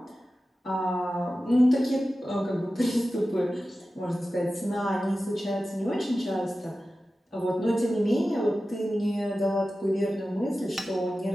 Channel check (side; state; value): both; normal; correlation 0.94